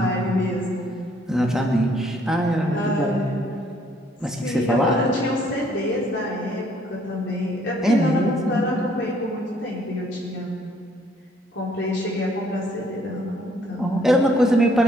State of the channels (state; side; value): normal; both; correlation 0.64